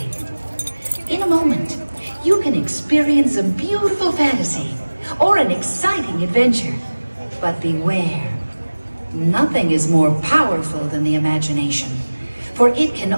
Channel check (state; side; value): inverted; both; correlation -1.00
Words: In a moment, you can experience a beautiful fantasy or an exciting adventure. But beware, nothing is more powerful than the imagination, for it